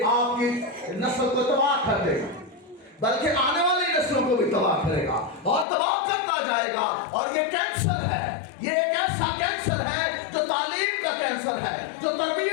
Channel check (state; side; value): drops out; right; at 5.7 s